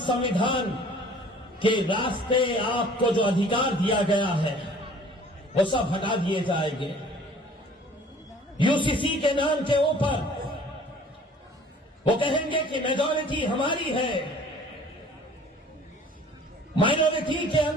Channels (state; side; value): normal; both; correlation 0.51